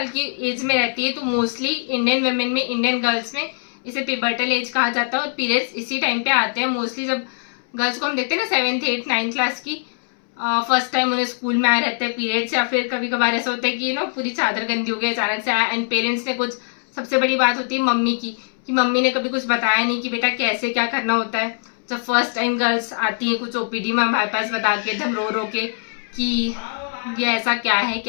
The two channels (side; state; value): right; silent; 64 dB below the other